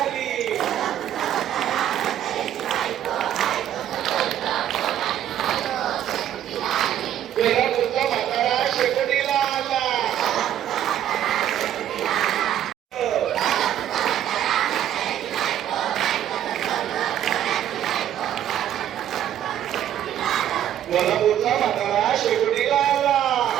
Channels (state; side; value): quieter; left; 11.0 dB